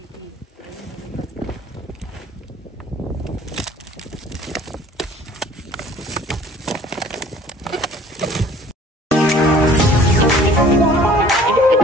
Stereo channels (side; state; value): both; normal; correlation 0.52